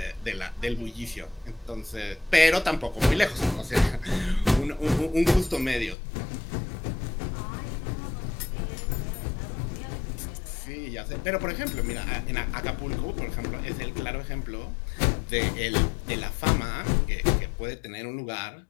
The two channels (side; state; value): right; drops out; at 6.0 s